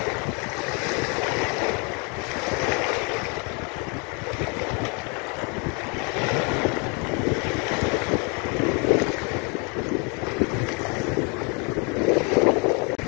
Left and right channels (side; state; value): right; quieter; 33.4 dB